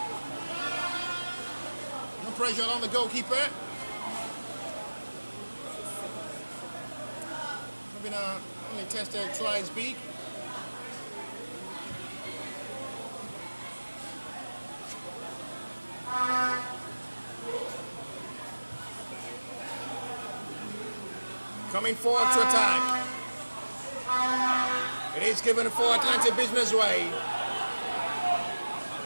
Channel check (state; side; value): inverted; both; correlation -1.00